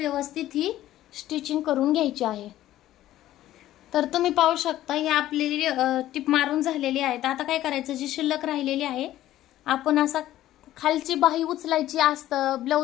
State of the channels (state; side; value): quieter; right; 13.9 dB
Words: ही स्टिचिंग करून घ्यायची आहे. तर तुम्ही पाहू शकता ही आपली टिप मारून झालेली आहे. आता काय करायचं, जी शिल्लक राहिलेली आहे आपण असा खालची बाही उचलायची असतं